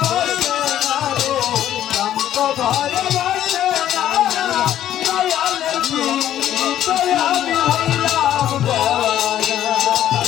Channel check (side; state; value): right; quieter; 11.7 dB